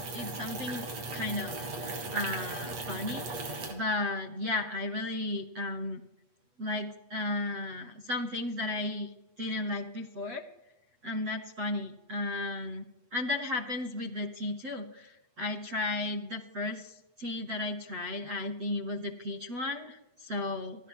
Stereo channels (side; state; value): left; late; 8.2 ms